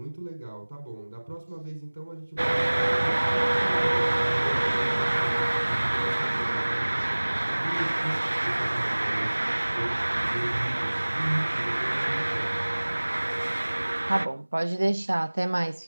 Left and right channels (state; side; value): inverted; both; correlation -1.00